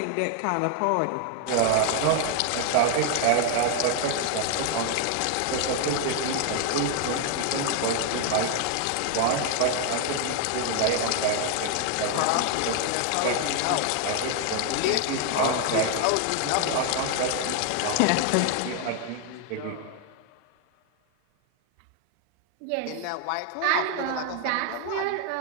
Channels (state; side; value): different; both; correlation 0.00